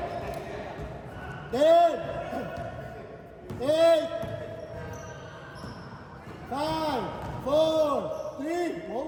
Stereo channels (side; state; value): both; identical; correlation 1.00